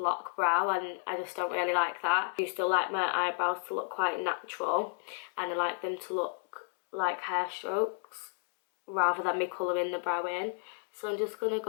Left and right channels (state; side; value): silent; right; 56 dB below the other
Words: brow, and I just don't really like that. I still like my eyebrows to look quite natural, and I like them to look like hair strokes rather than me colouring the brow in. So I'm just going to